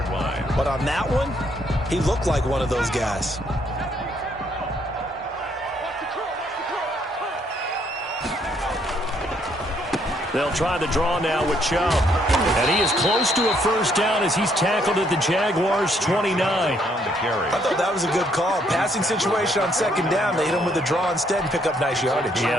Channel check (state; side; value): normal; both; correlation 0.70